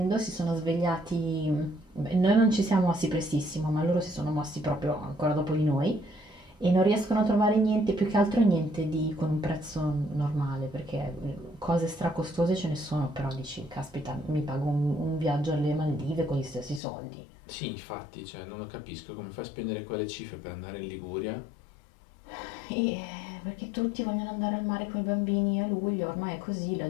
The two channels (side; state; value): right; drops out; at 16.8 s